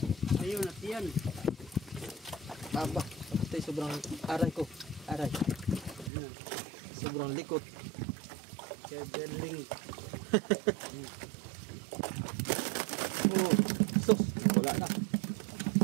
Ayun, natiyan. Aba, ito'y sobrang aray ko. Aray. Sobrang likot. Kebeling. Oh, sus! Wala na.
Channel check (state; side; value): drops out; left; at 6.1 s